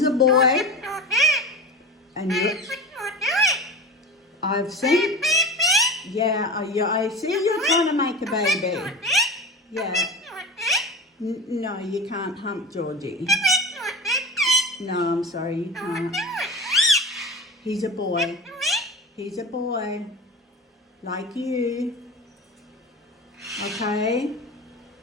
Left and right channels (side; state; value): both; normal; correlation 0.31